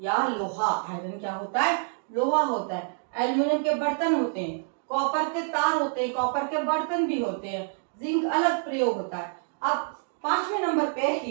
या लोहा, आयरन क्या होता है, लोहा होता है, एल्यूमिनियम के बर्तन होते हैं, कॉपर के तार होते हैं, कॉपर के बर्तन भी होते हैं, जिंक अलग प्रयोग होता है। अब पांचवें नंबर पे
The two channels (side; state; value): left; silent; 60 dB below the other